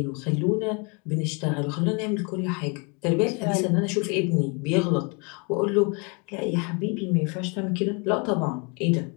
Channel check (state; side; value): quieter; right; 32.8 dB